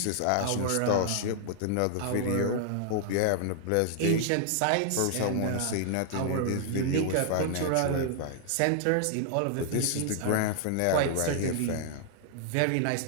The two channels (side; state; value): both; different; correlation 0.00